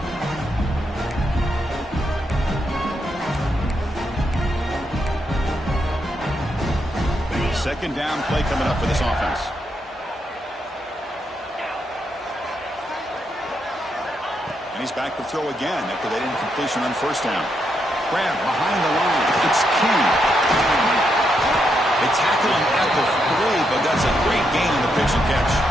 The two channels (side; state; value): both; normal; correlation 0.80